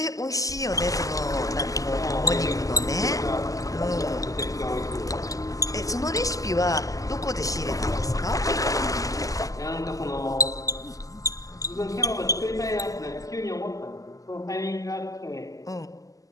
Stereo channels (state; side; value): late; right; 0.17 ms